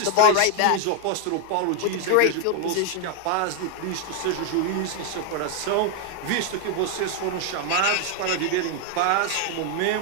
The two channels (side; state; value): both; different; correlation 0.00